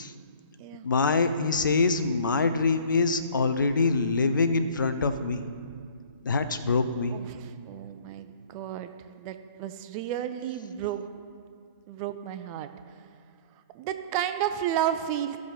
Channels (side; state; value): both; inverted; correlation -0.51